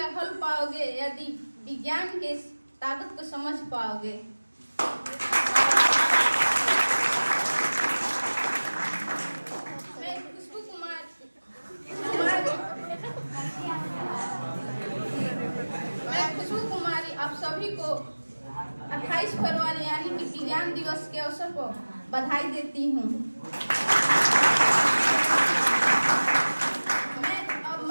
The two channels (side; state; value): both; inverted; correlation -1.00